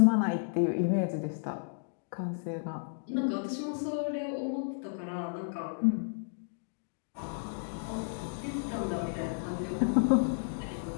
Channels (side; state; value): right; silent; digital silence